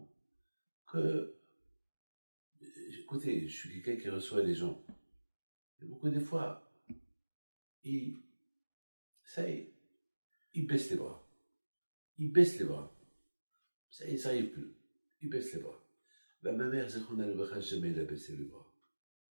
que, écoutez, je suis quelqu'un qui reçoit les gens. Et beaucoup de fois, ça y est, ils baissent les bras. Ils baissent les bras. Ça y est, ça n'arrive plus. Ils baissent les bras. Ben, ma mère, Zechona Lebracha, jamais elle a baissé les bras.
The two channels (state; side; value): inverted; both; correlation -1.00